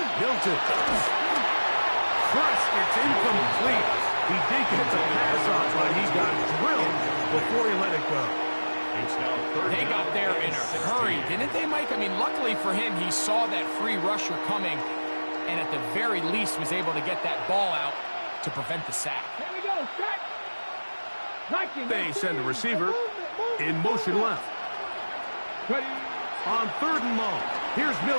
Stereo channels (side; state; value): both; inverted; correlation -1.00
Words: Milton. Crushed, it's incomplete. He did get the pass off, but he got drilled before he let it go. They got there in a hurry, didn't they, Mike? I mean, luckily for him, he saw that free rusher coming and at the very least was able to get that ball out to prevent the sack. Here we go, set. They send the receiver in motion left. Ready. On 3rd and long, here's